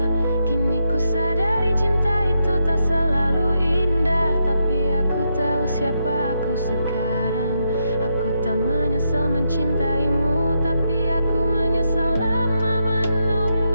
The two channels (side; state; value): both; inverted; correlation -0.81